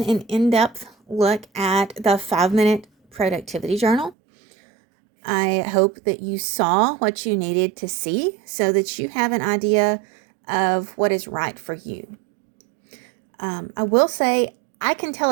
an in-depth look at the 5-minute productivity journal. I hope that you saw what you needed to see so that you have an idea of what is right for you. I will say I can tell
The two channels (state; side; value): drops out; left; at 4.2 s